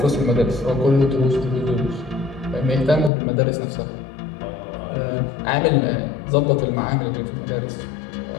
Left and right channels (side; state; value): right; drops out; at 3.1 s